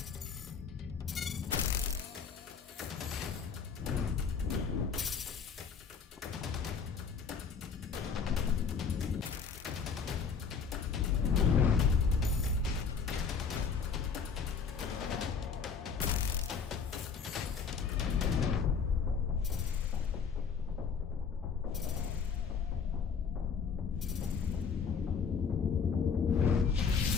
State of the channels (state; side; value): quieter; right; 6.0 dB